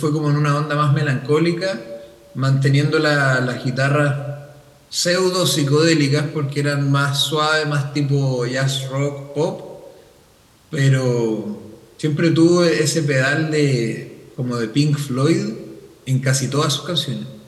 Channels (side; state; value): both; identical; correlation 1.00